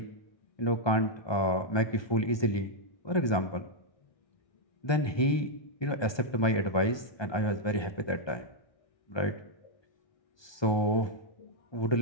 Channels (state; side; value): late; right; 1.2 ms